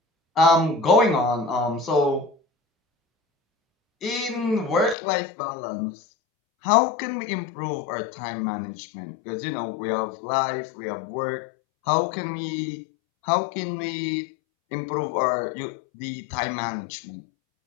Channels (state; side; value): drops out; right; at 5.0 s